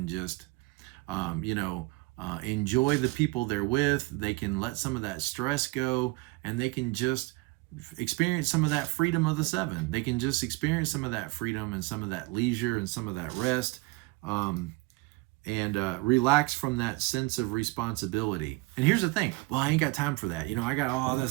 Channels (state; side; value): quieter; left; 23.9 dB